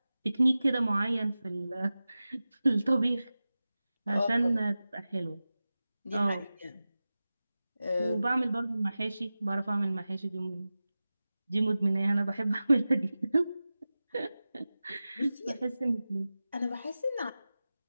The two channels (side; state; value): both; inverted; correlation -0.95